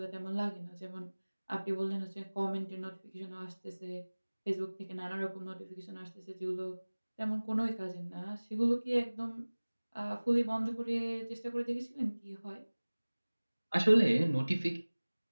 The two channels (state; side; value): inverted; both; correlation -1.00